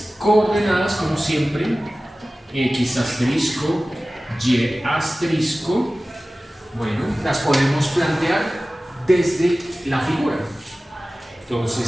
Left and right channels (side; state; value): both; normal; correlation 0.97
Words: coordenadas, como siempre, X asterisco, Y asterisco, bueno, las podemos plantear desde la figura.